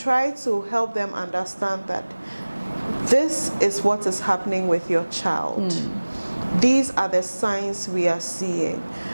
to help them understand that this is what is happening with your child. These are the signs we are seeing.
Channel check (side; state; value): both; inverted; correlation -1.00